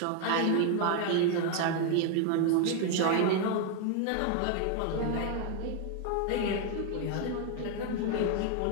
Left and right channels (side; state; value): both; different; correlation 0.01